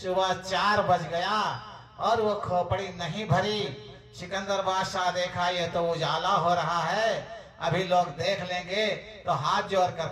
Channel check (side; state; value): both; identical; correlation 1.00